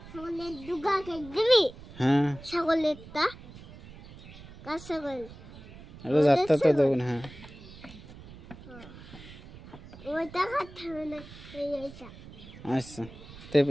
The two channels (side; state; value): right; noise; rumble, 17 dB below the sound